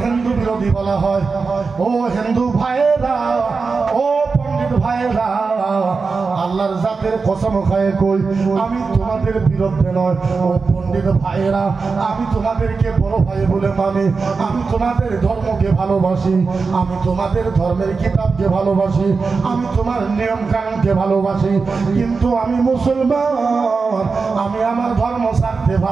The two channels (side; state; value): left; quieter; 4.6 dB